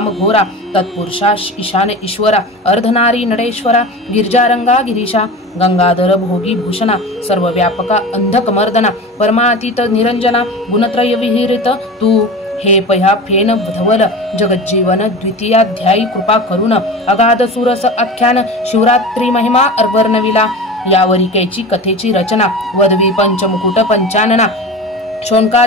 घोरा तत्पुरुषा ईशान ईश्वरा अर्धनारी नडेश्वरा गिरिजारंगा गिरीशा गंगाधर भोगी भूषणा सर्वव्यापका अंधक मर्दना परमातीत निरंजना गुणत्रय विहिरित तू हे पह्या फेन धवल जगज्जीवन द्वितीयाध्यायी कृपा करुण अगाध सुरस आख्यान शिवरात्री महिमा अर्वर्णविला यावरिकेची कथेची रचना वदवी पंचमुकुट पंचानना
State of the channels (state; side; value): normal; both; correlation 0.32